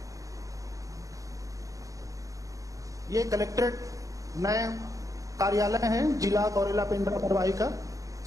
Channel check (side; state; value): left; late; 0.16 ms